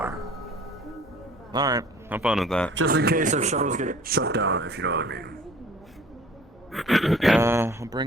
Alright, have fun with that. Just in case if shuttles get shut down, if you know what I mean. I'll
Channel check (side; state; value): both; normal; correlation 0.50